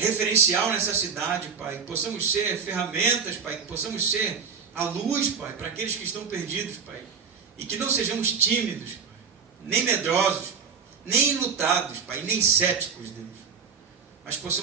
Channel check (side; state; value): left; quieter; 6.1 dB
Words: nessa cidade, Pai, que possamos ser ferramentas, Pai, que possamos ser a luz, Pai, para aqueles que estão perdidos, Pai, e que não sejamos tímidos, Pai, nem medrosos, nem enlutados, Pai, nem céticos, Deus, mas